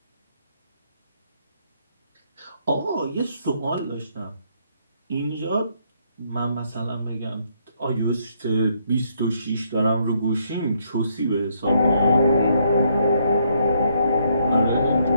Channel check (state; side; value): inverted; both; correlation -0.72